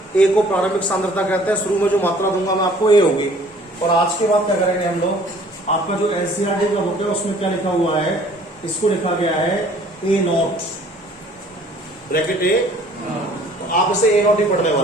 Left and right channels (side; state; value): both; normal; correlation 0.55